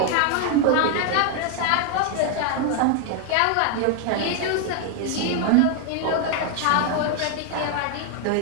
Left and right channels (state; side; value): different; both; correlation 0.00